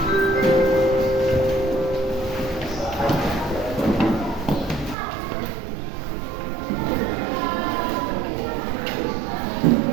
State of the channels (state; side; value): drops out; left; at 5.0 s